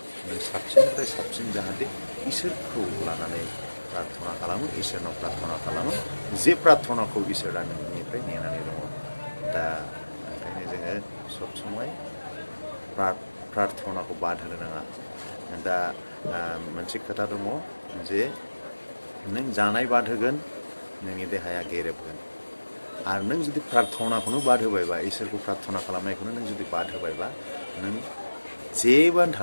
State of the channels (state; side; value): inverted; both; correlation -1.00